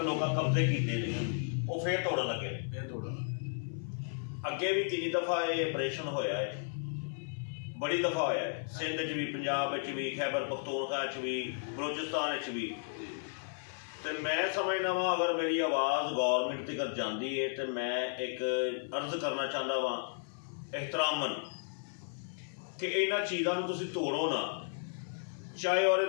ਲੋਕਾਂ ਕਬਜ਼ੇ ਕੀਤੇ ਨੇ ਉਹ ਫੇਰ ਤੋੜਨ ਲੱਗੇ ਨੇ ਫੇਰ ਤੋੜਨ ਅੱਗੇ ਵੀ ਕਿੰਨੀ ਦਫਾ ਇਹ ਆਪਰੇਸ਼ਨ ਹੋਇਆ ਹੈ ਬੜੀ ਦਫਾ ਹੋਇਆ ਹੈ ਸਿੰਧ 'ਚ ਵੀ ਪੰਜਾਬ ਵਿੱਚ ਵੀ ਖੈਬਰ ਪਖਤੂਨਖਵਾ 'ਚ ਵੀ ਬਲੋਚਿਸਤਾਨ 'ਚ ਵੀ तो मैं समझना वा अगर मेरी आवाज़ गौरमेंट तक जाती है तो मैं एक अर्ज करना चाहता वा एहतरामन कि इन्होंने चीज़ों को तुसीं तोड़ो ना चाहे और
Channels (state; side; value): silent; right; 55 dB below the other